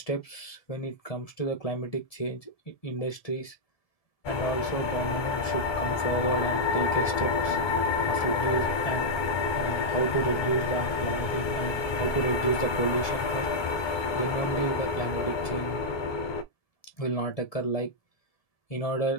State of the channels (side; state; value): right; late; 1.7 ms